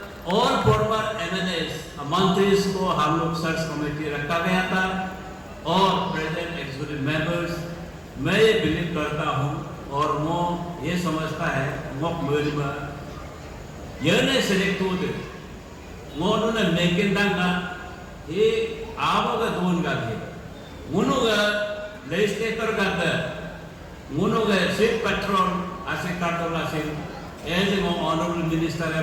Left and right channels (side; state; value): both; identical; correlation 1.00